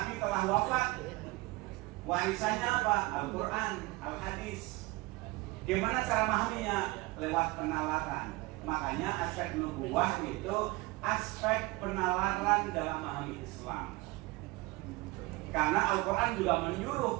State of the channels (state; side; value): quieter; left; 22.2 dB